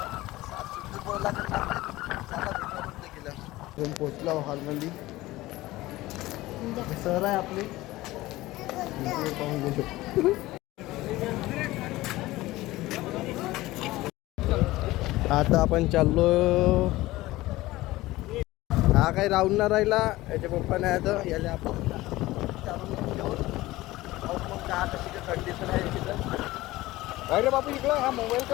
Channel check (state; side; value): quieter; right; 18.1 dB